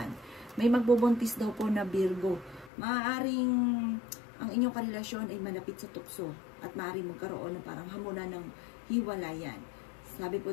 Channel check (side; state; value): right; drops out; at 2.7 s